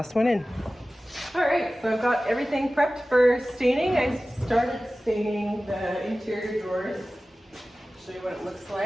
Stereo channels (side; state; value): both; normal; correlation 0.96